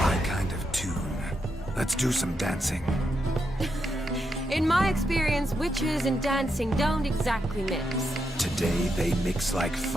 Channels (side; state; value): both; normal; correlation 0.83